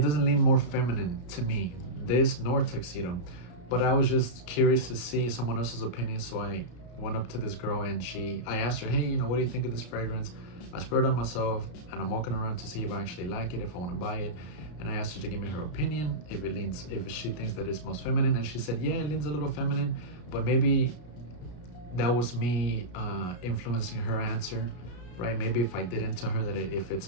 doesn't lean more feminine to me, this nor Tuxedo. But I was just curious to see someone else's opinion, so I went up to this girl, and I asked her, hey, you know, what do you think of this fragrance? I sprayed it on myself, and I'm walking around to see if I actually like it, if I want to buy it. And I asked her to give me her opinion, if she thinks that it smells feminine. And she said, yeah, it leans a little feminine, but maybe that was me influencing her answer, right? Maybe if I didn't tell her that if it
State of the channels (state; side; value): late; right; 33 ms